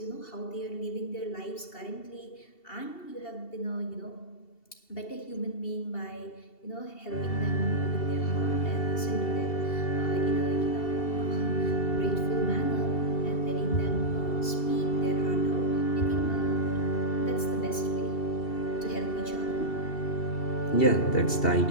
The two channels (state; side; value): late; right; 2.7 ms